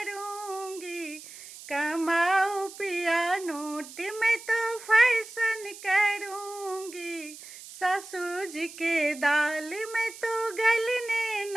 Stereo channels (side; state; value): right; noise; hiss, 15 dB below the sound